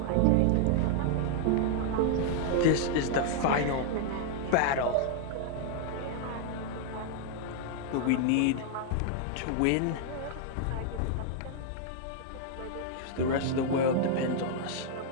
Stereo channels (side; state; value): both; different; correlation 0.00